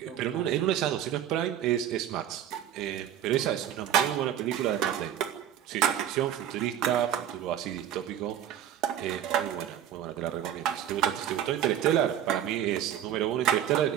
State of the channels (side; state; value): left; quieter; 10.6 dB